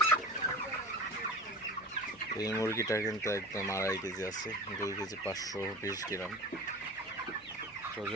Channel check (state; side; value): noise; left; hum, 27 dB below the sound